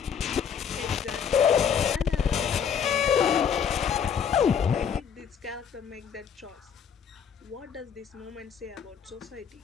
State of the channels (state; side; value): quieter; right; 7.5 dB